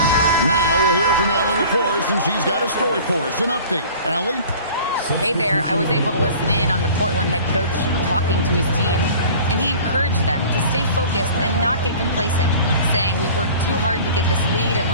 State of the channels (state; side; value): inverted; both; correlation -0.44